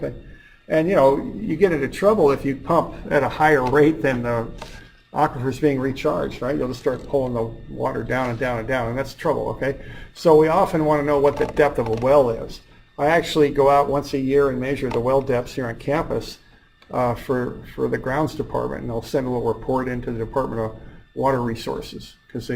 And you know, you get into trouble if you pump at a higher rate than the aquifer's being recharged, right? You'll just start pulling the water down and down and down, and that's trouble, okay? So we often want to know what the depth of a well is. I actually go out once a year and measure the well depths here on campus for the grounds department, and they'll send a little report into the Department of Water Resources because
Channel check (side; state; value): both; identical; correlation 1.00